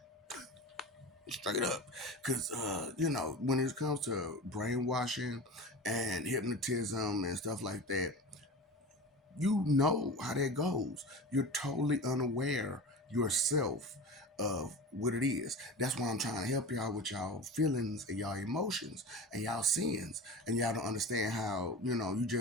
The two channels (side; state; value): both; normal; correlation 0.31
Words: Straight up. Because, when it comes to brainwashing and hypnotism and stuff like that, you know how that goes. You're totally unaware yourself of what it is. That's why I'm trying to help y'all with y'all feelings and y'all emotions and y'all sins. And y'all don't understand how, you